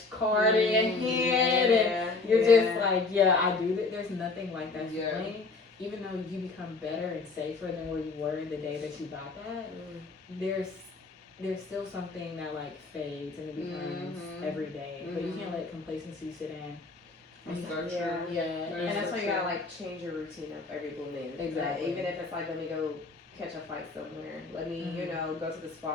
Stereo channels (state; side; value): quieter; right; 3.8 dB